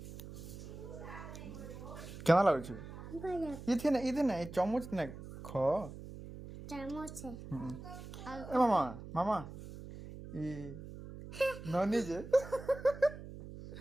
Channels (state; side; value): noise; right; hum, 12 dB below the sound